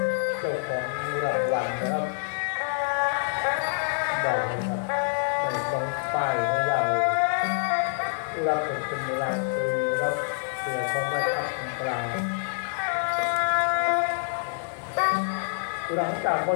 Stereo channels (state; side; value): silent; right; 57 dB below the other